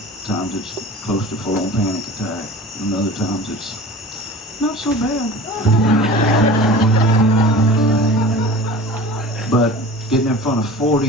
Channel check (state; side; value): normal; both; correlation 0.38